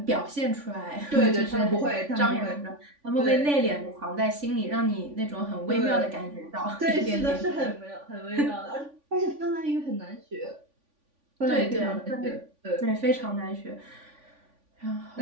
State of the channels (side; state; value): left; late; 3.5 ms